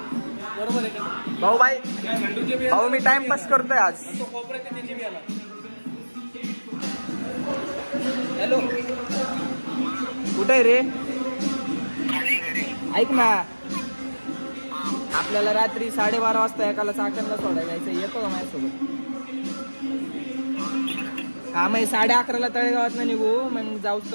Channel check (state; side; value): inverted; both; correlation -1.00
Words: बरोबर आहे का भाऊ मी टाइमपास करतोय आज. हॅलो कुठे आहे रे? ऐक ना, आपल्याला रात्री 12:30 वाजता एकाला चाकणला सोडायला जायचं, येतो का माझ्यासोबत? हा मग 11:30ला तळेगावात ना निघू, मग जाऊच